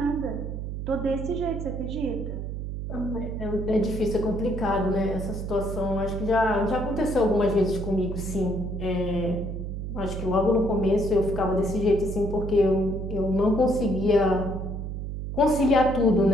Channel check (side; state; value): right; noise; hum, 5 dB below the sound